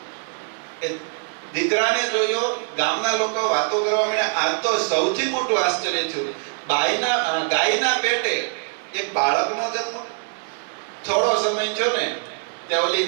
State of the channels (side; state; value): left; silent; 57 dB below the other